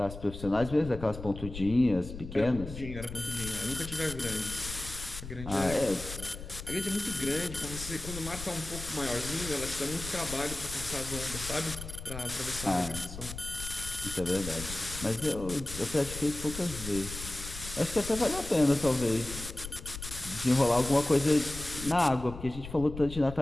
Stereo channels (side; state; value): left; noise; rumble, 11 dB below the sound